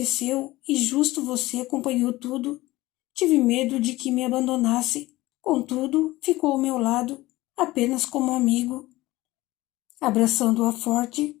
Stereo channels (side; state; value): right; quieter; 18.4 dB